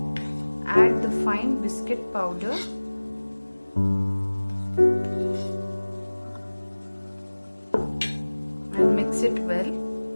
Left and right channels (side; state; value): both; inverted; correlation -1.00